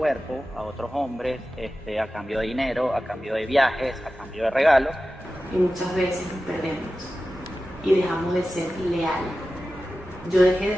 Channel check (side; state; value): both; normal; correlation 0.94